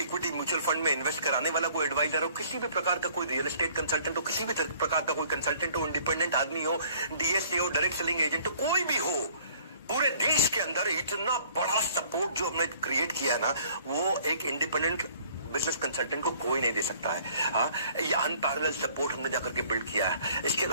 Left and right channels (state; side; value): inverted; both; correlation -0.56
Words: म्यूचुअल फंड में इन्वेस्ट कराने वाला कोई एडवाइजर हो, किसी भी प्रकार का कोई रियल एस्टेट कंसल्टेंट हो, किसी भी प्रकार का कोई कंसल्टेंट हो, इंडिपेंडेंट आदमी हो, DSA हो, डायरेक्ट सेलिंग एजेंट हो, कोई भी हो, पूरे देश के अंदर इतना बड़ा सपोर्ट जो हमने क्रिएट किया है ना, वो एक इंडिपेंडेंट बिजनेस कंसल्टेंट को कोई नहीं दे सकता है। हाँ, ये अनपैरेलल सपोर्ट हमने जाकर के बिल्ड किया है। इसके